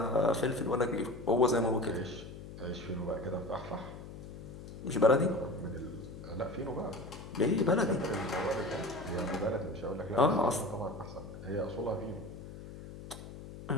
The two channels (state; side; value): noise; left; hum, 12 dB below the sound